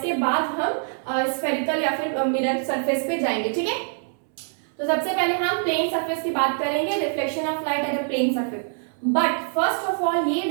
बाद हम स्फेरिकल या फिर मिरर सरफेस पे जाएंगे, ठीक है. तो सबसे पहले हम प्लेन सरफेस की बात करेंगे, reflection of light at a plane surface. But first of all ये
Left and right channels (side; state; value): left; silent; 62 dB below the other